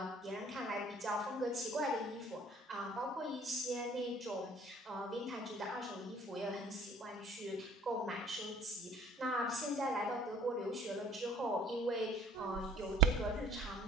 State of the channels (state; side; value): normal; both; correlation 0.52